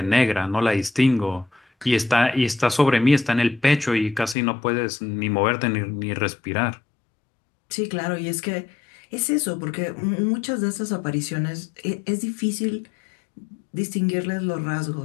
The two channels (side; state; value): right; drops out; at 4.4 s